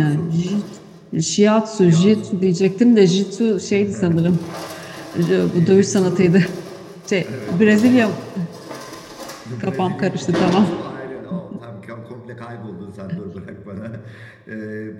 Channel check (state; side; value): identical; both; correlation 1.00